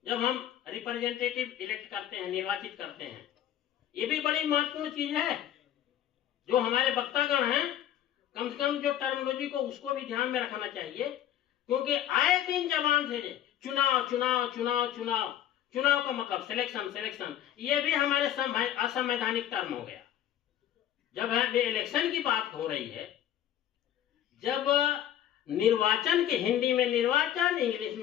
जब हम रिप्रेजेंटेटिव इलेक्ट करते हैं, निर्वाचित करते हैं, ये भी बड़ी महत्वपूर्ण चीज है जो हमारे वक्तागण हैं कम से कम जो टर्मिनोलॉजी को उसको भी ध्यान में रखना चाहिए, क्योंकि आए दिन जबान से चुनाव चुनाव चुनाव चुनाव, चुनाव का मतलब सिलेक्शन सिलेक्शन, ये भी हमारे असंवैधानिक टर्म हो गया। जब है इलेक्शन की बात हो रही है, जब निर्वाचन के हिंदी में निर्वाचन, इंग्लिश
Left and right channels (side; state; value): right; quieter; 11.4 dB